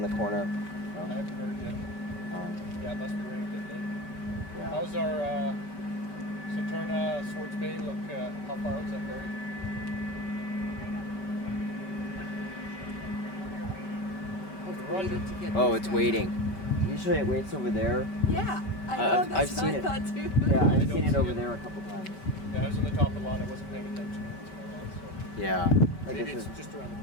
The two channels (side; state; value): right; late; 5.2 ms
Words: the corner. I haven't heard yet. Yeah, it must be running a bit late. Yeah. How's our Saturna, Swartz Bay look? How far out is that ferry? Waiting to get Oh, these it's guys waiting. out. Usually it waits over there. Yeah, I know. That's I've seen what I it. thought too. Yeah, I I've don't seen it see over it. there a couple times. Yeah, I was on the top of the lot. I wasn't paying attention. So Yeah. Like maybe I it's said, just around